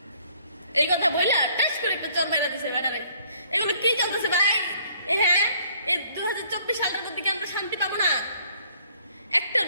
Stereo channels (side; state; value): both; inverted; correlation -0.62